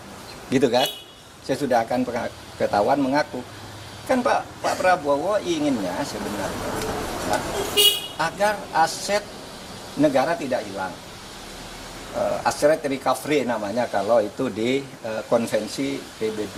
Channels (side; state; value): both; identical; correlation 1.00